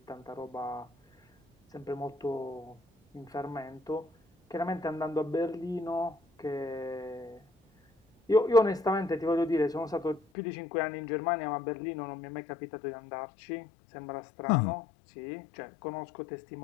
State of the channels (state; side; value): drops out; right; at 10.2 s